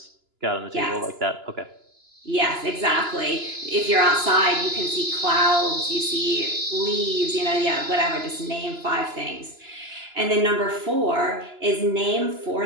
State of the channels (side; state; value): left; late; 2.9 ms